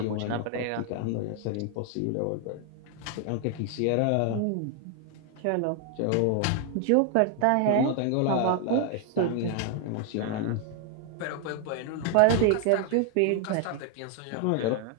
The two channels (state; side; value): different; both; correlation 0.00